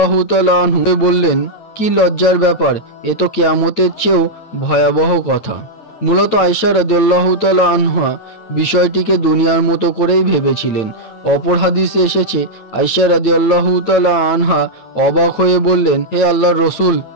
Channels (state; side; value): late; right; 9.1 ms